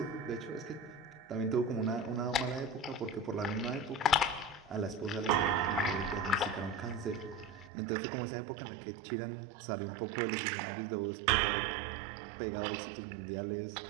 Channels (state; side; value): drops out; left; at 7.7 s